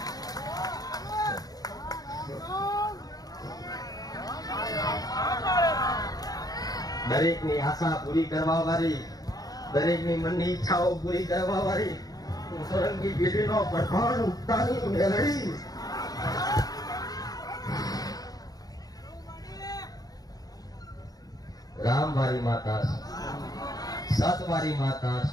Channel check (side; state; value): right; late; 0.18 ms